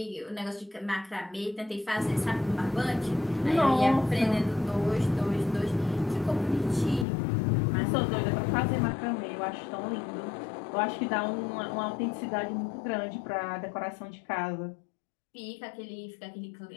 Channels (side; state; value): right; drops out; at 7.1 s